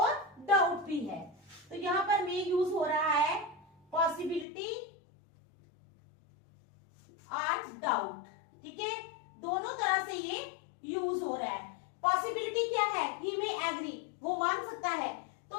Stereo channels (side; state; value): right; drops out; at 4.5 s